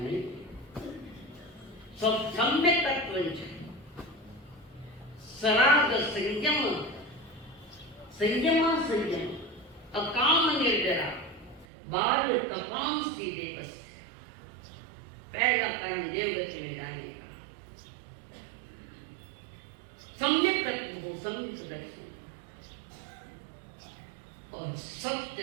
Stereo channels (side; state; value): left; drops out; at 11.7 s